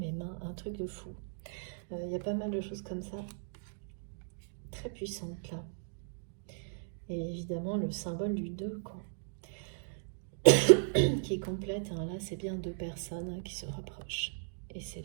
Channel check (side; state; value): left; silent; digital silence